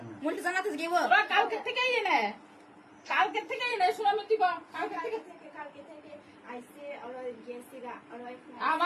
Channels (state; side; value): identical; both; correlation 1.00